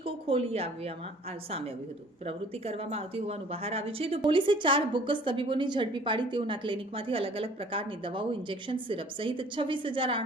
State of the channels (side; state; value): both; normal; correlation 0.52